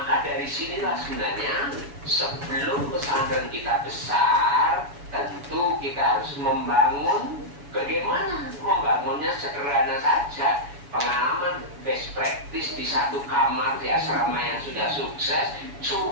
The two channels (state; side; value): late; left; 7.1 ms